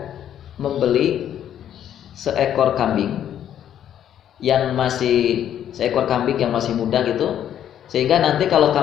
membeli seekor kambing yang masih muda gitu, sehingga nanti kalau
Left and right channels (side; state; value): right; quieter; 10.3 dB